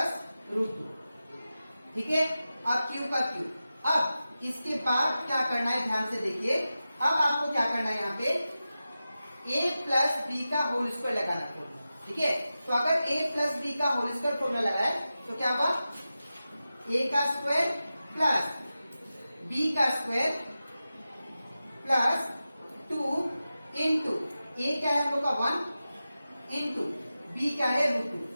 रूट 2, ठीक है। अब क्यूब का क्यूब। अब इसके बाद क्या करना है, ध्यान से देखिए। अब आपको क्या करना है, यहाँ पे a प्लस बी का होल स्क्वायर लगाना है, ठीक है। तो अगर a प्लस बी का होल स्क्वायर फॉर्मूला लगाए तो क्या हुआ, a का स्क्वायर प्लस b का स्क्वायर प्लस 2 इंटू a क्या है हम लोग का 1 इंटू b क्या है रूट 2,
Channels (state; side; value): inverted; both; correlation -0.93